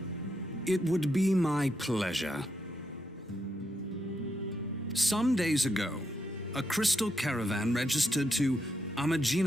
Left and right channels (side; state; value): both; normal; correlation 0.81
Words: It would be my pleasure. Some days ago, a crystal caravan registered to